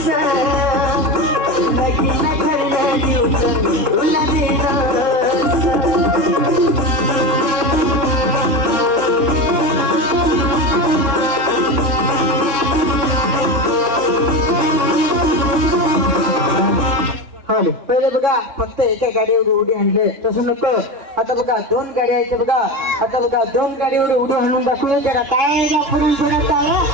तुला हो पहिले बघा फक्त एका गाडीवर उडी आणले तसं नको. आता बघा 2 गाड्या आहेत बघा. आता बघा 2 गाडीवर उडी आणून दाखवू. जरा काय पुढे थोडा काय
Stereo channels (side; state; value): left; late; 3.7 ms